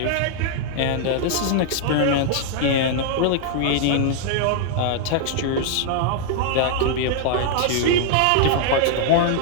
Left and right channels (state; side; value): different; both; correlation -0.01